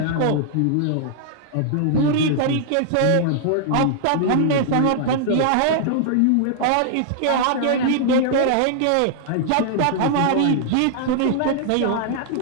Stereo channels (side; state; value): both; different; correlation -0.01